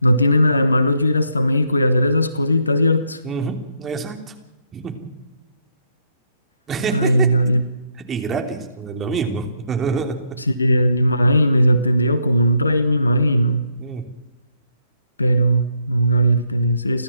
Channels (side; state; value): both; inverted; correlation -0.73